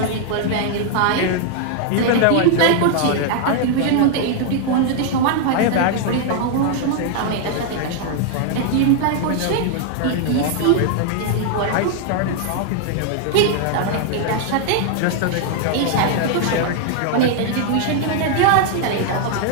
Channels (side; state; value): both; different; correlation 0.00